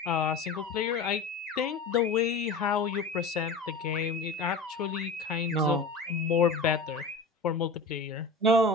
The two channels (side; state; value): right; quieter; 3.7 dB